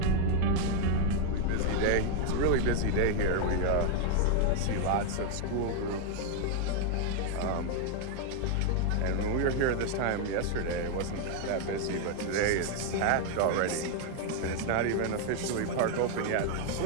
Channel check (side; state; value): both; different; correlation 0.00